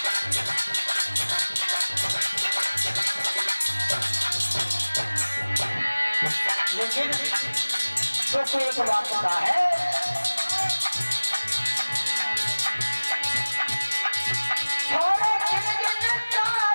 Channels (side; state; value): both; inverted; correlation -1.00